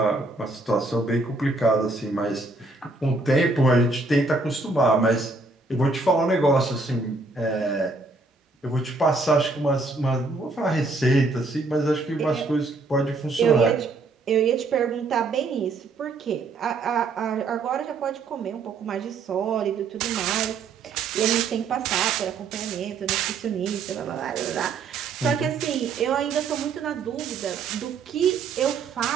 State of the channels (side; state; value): left; quieter; 3.7 dB